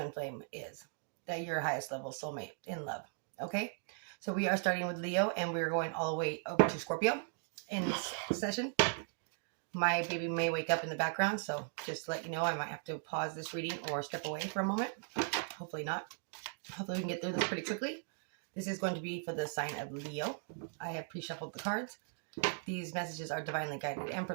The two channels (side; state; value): left; silent; 53 dB below the other